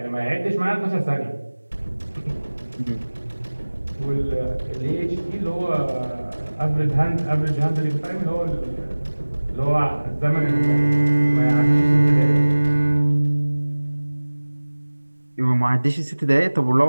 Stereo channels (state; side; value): inverted; both; correlation -1.00